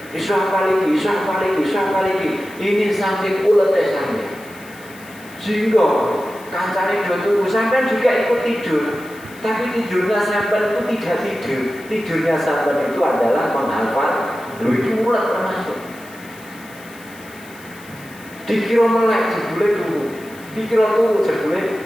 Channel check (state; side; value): noise; left; hiss, 22 dB below the sound